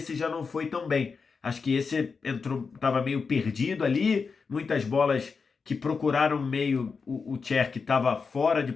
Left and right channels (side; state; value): right; quieter; 5.1 dB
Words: já não foi tão bem. Acho que esse estava meio perdido ali, muitas bolas que procuraram meio, o Cherki estava fora de